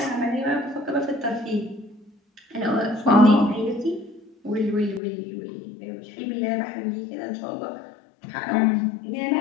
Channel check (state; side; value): drops out; right; at 5.0 s